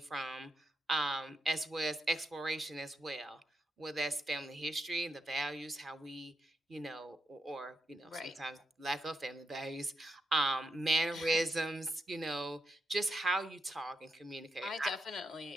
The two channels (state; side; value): normal; both; correlation 0.84